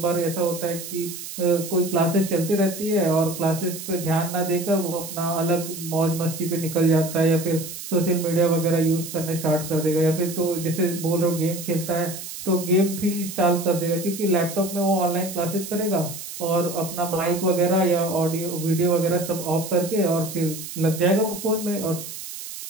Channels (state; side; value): noise; right; hiss, 10 dB below the sound